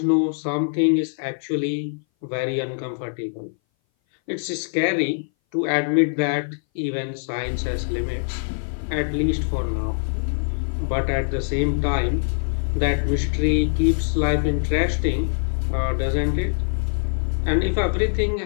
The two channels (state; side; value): silent; right; 59 dB below the other